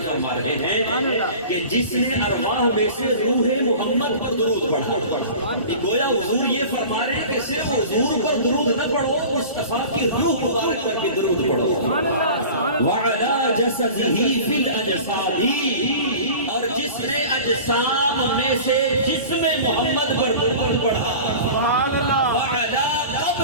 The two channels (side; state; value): both; inverted; correlation -0.39